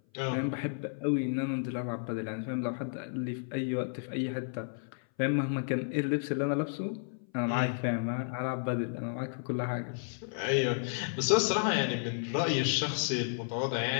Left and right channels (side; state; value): right; silent; 56 dB below the other